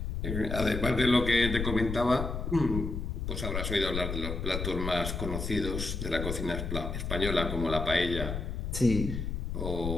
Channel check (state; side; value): noise; left; rumble, 3 dB below the sound